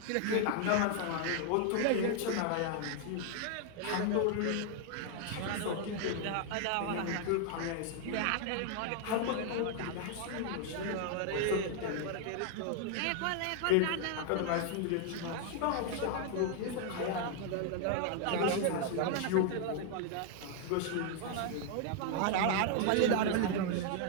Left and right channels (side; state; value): both; different; correlation 0.00